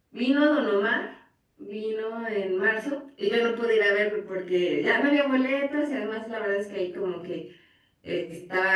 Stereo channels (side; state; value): both; identical; correlation 1.00